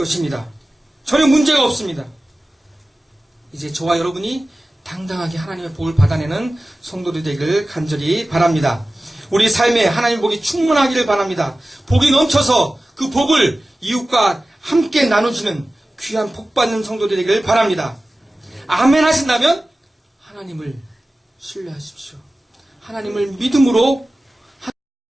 전혀 문제가 없습니다. 이제 저와 여러분이 당당하게 하나님의 복을 받아내는 성도들이 되기를 간절히 바랍니다. 우리 삶에 하나님의 복이 충만하기를 바랍니다. 복이 넘쳐서 그 복을 이웃과 함께 나누시는 귀한 복 받는 성도들이 되기를 바랍니다. 아멘 하신다면 하나님을 신뢰하십시오. 하나님을 믿음으로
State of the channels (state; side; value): normal; both; correlation 0.96